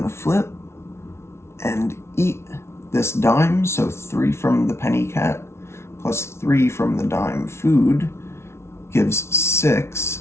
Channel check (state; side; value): late; right; 0.13 ms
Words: to flip and eat this dime. So 3 from the penny cat plus 3 from the dime food gives 6,